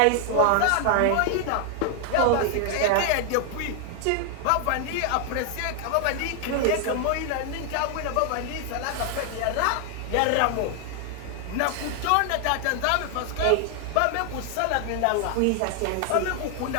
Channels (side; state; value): both; different; correlation 0.00